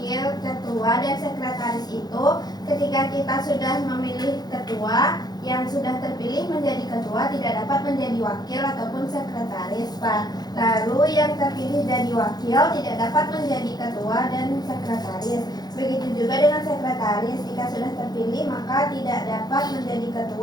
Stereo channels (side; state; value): right; late; 0.19 ms